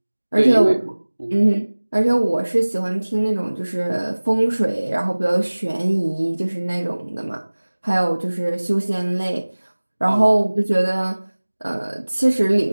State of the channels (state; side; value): inverted; both; correlation -1.00